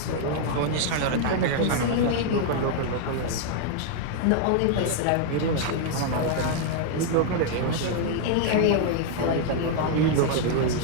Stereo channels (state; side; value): different; both; correlation 0.00